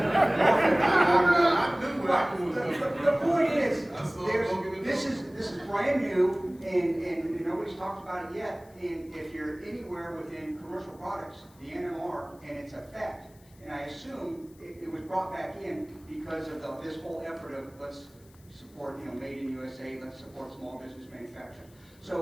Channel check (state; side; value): noise; left; hiss, 28 dB below the sound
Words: The point is, this is brand new, and nobody's talked about it yet. And if you're anywhere within commercial products, the NMR and its effect, and I assume it was brought back in because of this whole effort of let's support, you know, made in USA, let's support small business manufacturing.